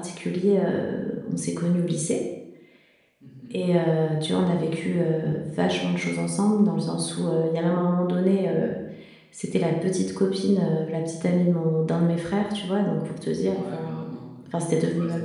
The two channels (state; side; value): identical; both; correlation 1.00